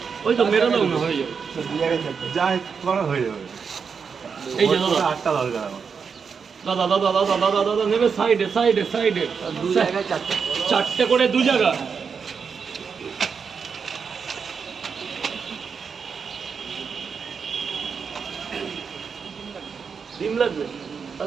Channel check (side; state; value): left; quieter; 6.0 dB